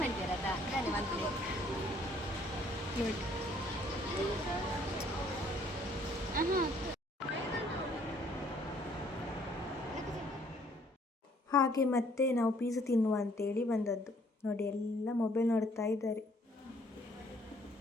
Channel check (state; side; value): normal; both; correlation 0.63